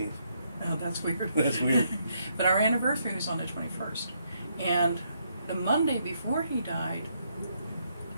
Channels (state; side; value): inverted; both; correlation -0.75